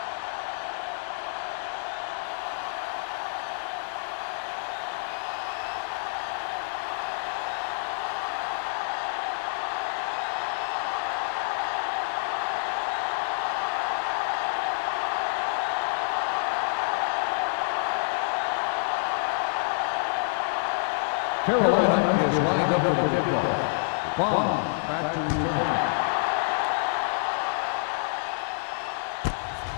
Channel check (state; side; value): silent; right; digital silence